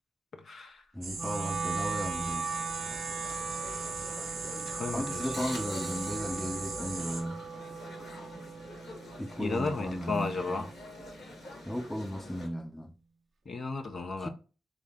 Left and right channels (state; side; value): normal; both; correlation 0.87